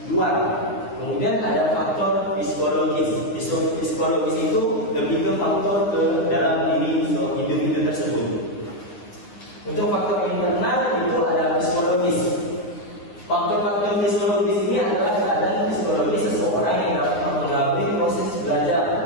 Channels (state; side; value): late; right; 9.7 ms